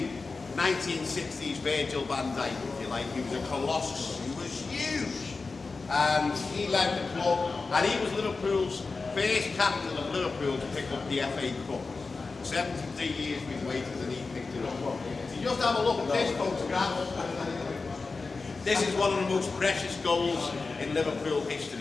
1960s Virgil van Dijk, if you like. He was a colossus. He was huge. And he led the club, and he was Liverpool's first captain of Liverpool to pick up the FA Cup. 73 years we've waited and he picked it up. So you just have a look at this photograph. This is one of the most precious goals in Liverpool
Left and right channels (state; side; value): quieter; right; 4.1 dB